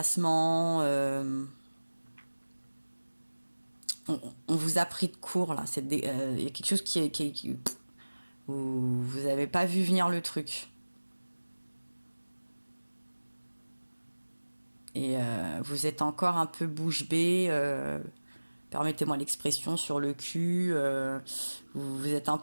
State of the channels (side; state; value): both; inverted; correlation -1.00